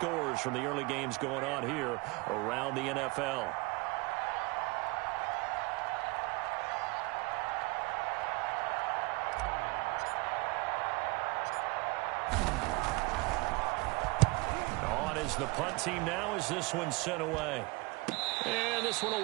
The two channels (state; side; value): quieter; left; 25.4 dB